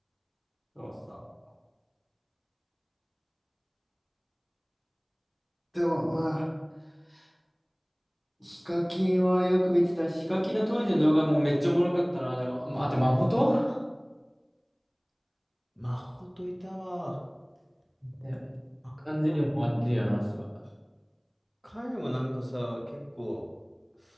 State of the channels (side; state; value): both; identical; correlation 1.00